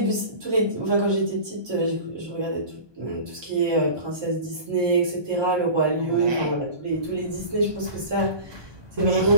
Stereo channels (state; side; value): late; left; 1.2 ms